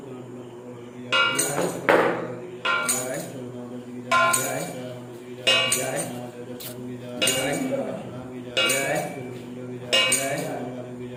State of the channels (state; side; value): identical; both; correlation 1.00